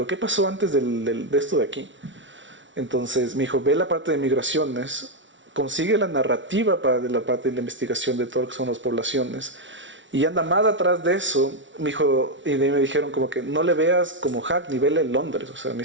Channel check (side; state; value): left; late; 0.55 ms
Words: ¿qué pasó antes de esto de aquí? Entonces me dijo, ve la parte de migraciones, consigue la narrativa para la parte de la investigación de todo lo que son las poblaciones, y anda más atrás de eso, me dijo, y de ahí me dijeron como que no le veas como Hackney, vele Londres, o sea, me